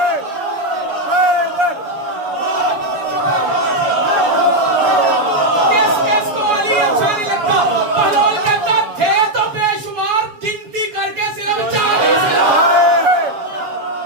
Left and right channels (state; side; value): late; left; 7.1 ms